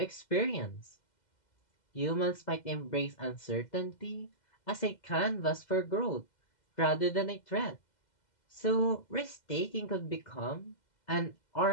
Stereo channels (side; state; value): right; late; 2.0 ms